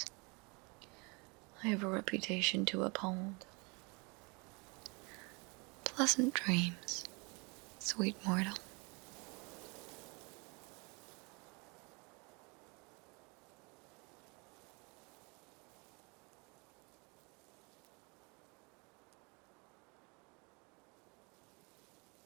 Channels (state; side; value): quieter; left; 30.3 dB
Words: I have a reputation to uphold. Pleasant dreams, sweet mortal.